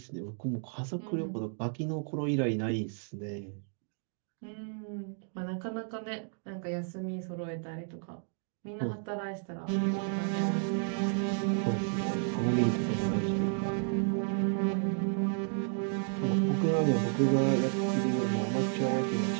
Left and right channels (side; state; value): left; silent; 56 dB below the other